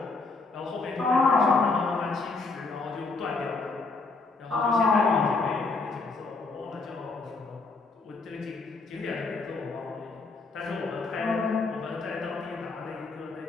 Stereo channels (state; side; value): quieter; right; 3.9 dB